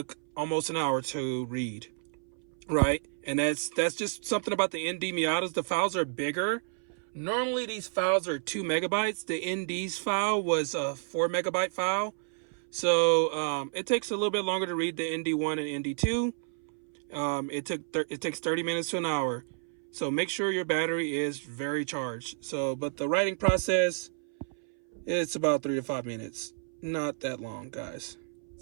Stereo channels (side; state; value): left; silent; 57 dB below the other